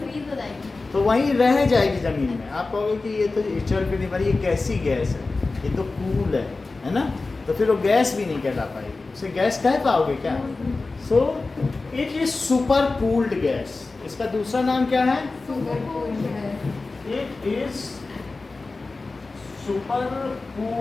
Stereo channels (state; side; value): quieter; right; 3.6 dB